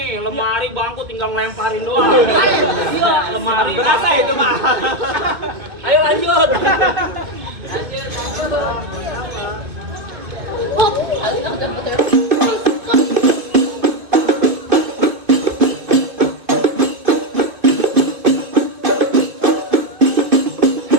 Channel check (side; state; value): left; late; 2.0 ms